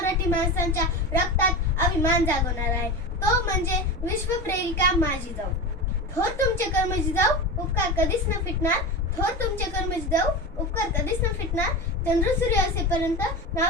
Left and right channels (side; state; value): both; normal; correlation 0.24